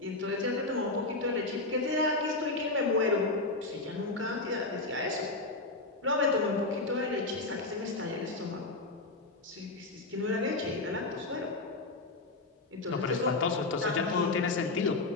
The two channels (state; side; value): quieter; right; 3.2 dB